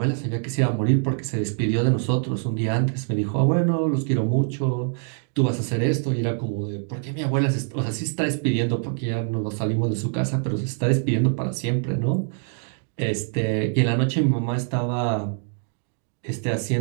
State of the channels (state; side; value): silent; left; 56 dB below the other